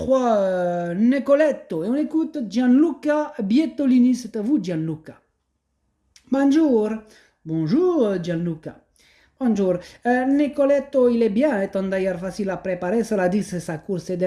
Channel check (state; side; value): identical; both; correlation 1.00